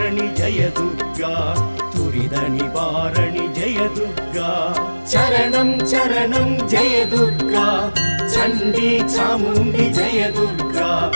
जय दुर्गा दुरितनिवारणि जय दुर्गा चरणं चरणं जय दुर्गा चण्डी चामुण्डी जय दुर्गा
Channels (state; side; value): inverted; both; correlation -1.00